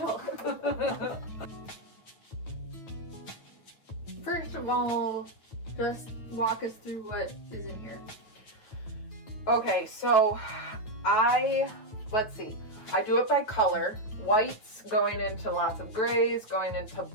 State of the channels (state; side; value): late; right; 9.2 ms